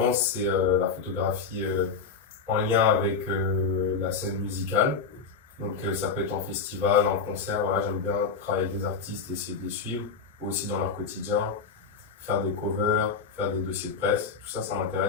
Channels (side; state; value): right; quieter; 5.3 dB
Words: c'est la photographie en lien avec la scène musicale. Donc ça peut être en festival, en concert, voilà, j'aime bien travailler avec des artistes, essayer de les suivre, aussi dans leur quotidien, faire des covers, faire des dossiers de presse, tout ça, ça